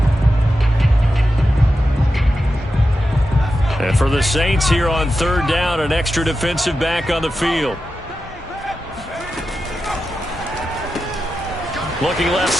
And for the Saints here on 3rd down, an extra defensive back on the field. Looking left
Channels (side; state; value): both; normal; correlation 0.90